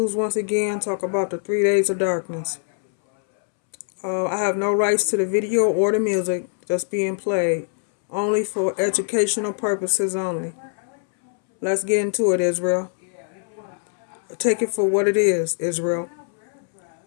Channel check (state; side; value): silent; right; 64 dB below the other